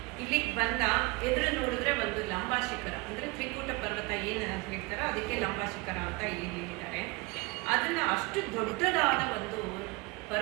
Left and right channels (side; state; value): left; quieter; 25.9 dB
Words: ಇಲ್ಲಿಗೆ ಬಂದ, ಎದುರು ನೋಡಿದ್ರೆ ಒಂದು ಲಂಬಾಶಿಖರ ಅಂದ್ರೆ ತ್ರಿಕೂಟ ಪರ್ವತ ಏನು ಅಂತ ಹೇಳ್ತಾರೋ ಅದಕ್ಕೆ ಲಂಬಾಶಿಖರ ಅಂತ ಇಲ್ಲಿ ಹೇಳಿದ್ದಾರೆ. ಅದನ್ನ ಅಷ್ಟು ದೊಡ್ಡದಾದ ಒಂದು